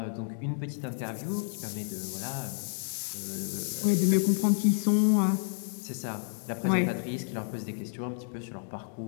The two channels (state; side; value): silent; right; digital silence